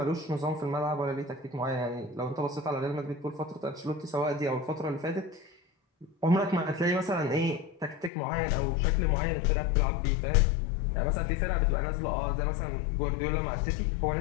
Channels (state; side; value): drops out; right; at 8.1 s